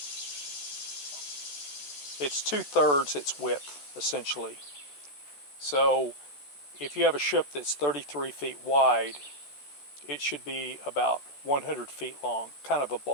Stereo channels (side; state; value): right; late; 14 ms